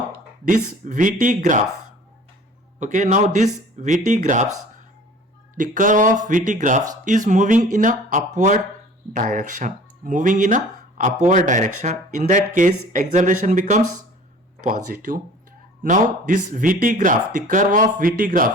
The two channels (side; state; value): both; normal; correlation 0.47